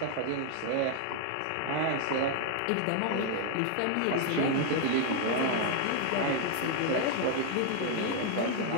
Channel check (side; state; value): both; different; correlation 0.00